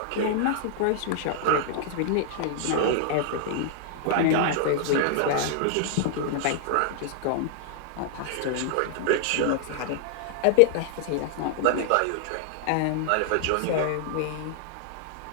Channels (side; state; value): both; different; correlation -0.01